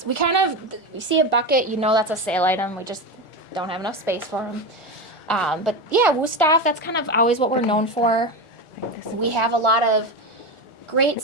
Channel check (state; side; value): late; right; 1.4 ms